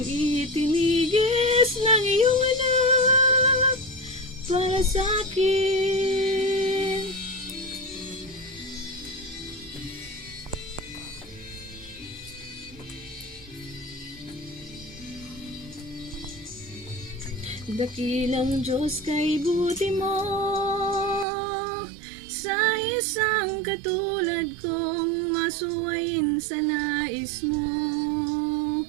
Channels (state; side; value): drops out; left; at 21.2 s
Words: itinigis ng iyong anak para sa akin. Dakilang Diyos, kay buti mo sa isang katulad kong masuwayin sa nais mo.